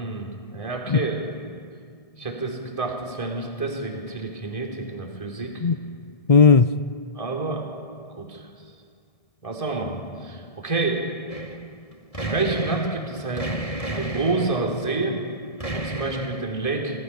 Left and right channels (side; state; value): right; late; 1.7 ms